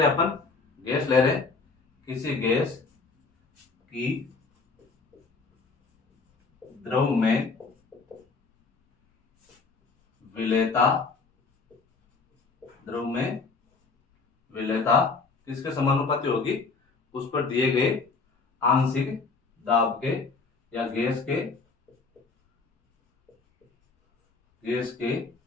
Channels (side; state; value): right; quieter; 4.3 dB